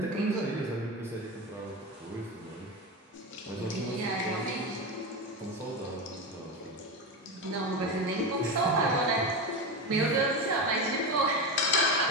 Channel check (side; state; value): both; normal; correlation 0.19